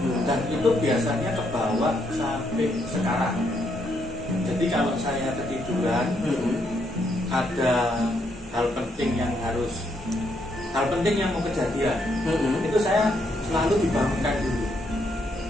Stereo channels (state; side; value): normal; both; correlation 0.75